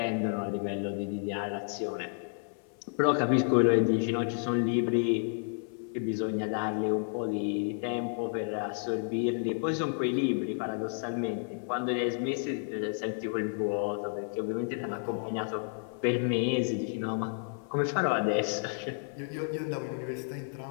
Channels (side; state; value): right; silent; 57 dB below the other